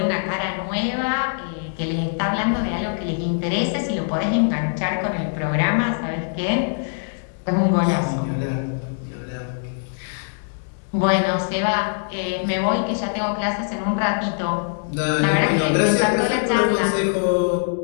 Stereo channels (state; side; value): silent; right; digital silence